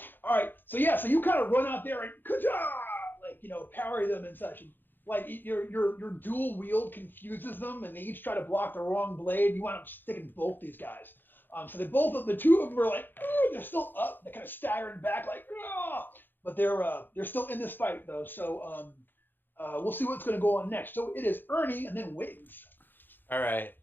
All right, so you kind of run out there and like parry them and such. And, like your dual wield confuses them, and they each try to block the wrong blade. You wind up sticking both these guys. So the two of them are like, they're still up. They're kind of staggering back, like, but they're still in this fight though. So we'll see what's going to go on next. So it is Ernie and then Wiggs. All right.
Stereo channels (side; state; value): right; late; 0.094 ms